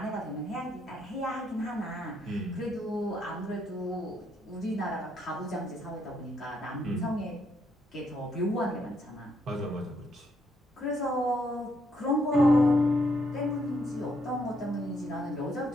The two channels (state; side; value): normal; both; correlation 0.74